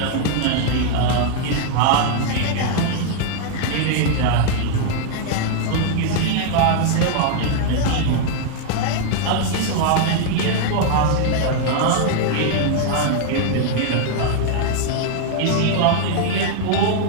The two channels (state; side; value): different; both; correlation 0.00